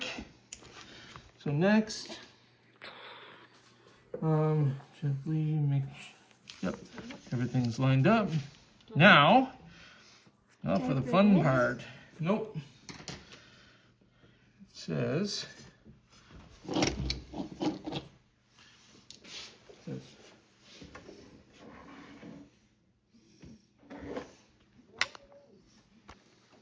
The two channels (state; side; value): identical; both; correlation 1.00